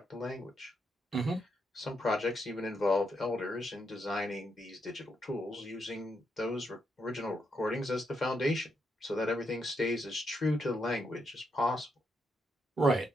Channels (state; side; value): normal; both; correlation 0.80